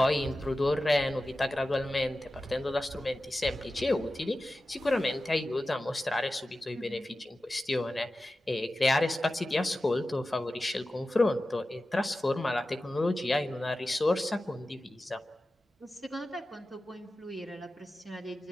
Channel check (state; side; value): normal; both; correlation 0.94